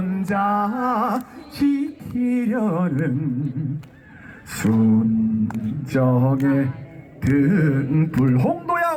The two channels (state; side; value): identical; both; correlation 1.00